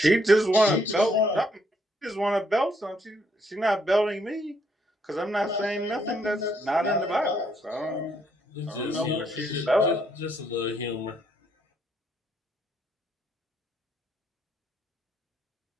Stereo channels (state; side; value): normal; both; correlation 0.71